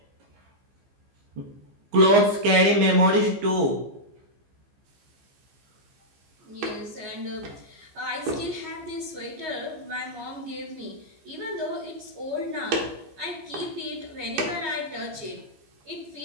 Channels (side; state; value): left; late; 15 ms